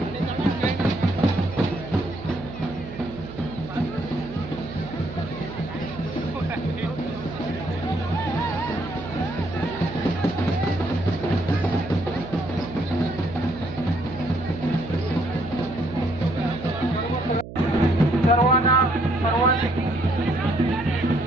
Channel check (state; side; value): noise; right; hum, 12 dB below the sound